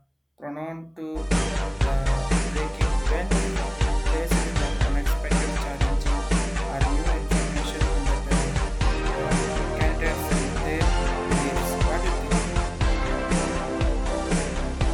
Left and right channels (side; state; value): both; identical; correlation 1.00